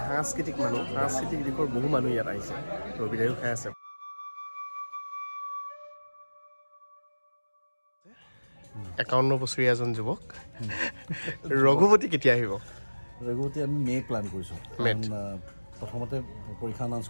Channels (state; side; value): inverted; both; correlation -1.00